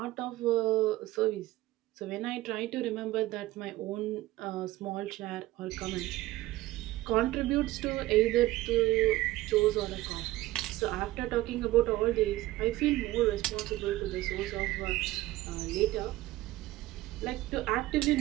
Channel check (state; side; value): quieter; left; 17.0 dB